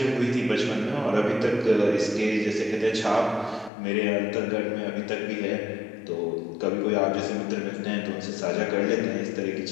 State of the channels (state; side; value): drops out; right; at 3.7 s